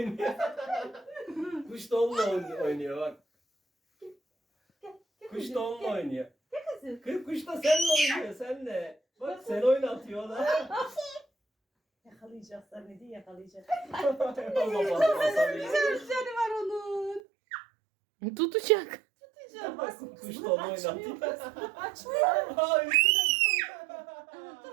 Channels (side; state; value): left; drops out; at 17.2 s